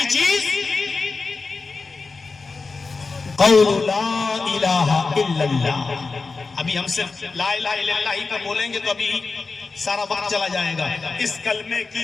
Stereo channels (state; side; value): quieter; right; 4.2 dB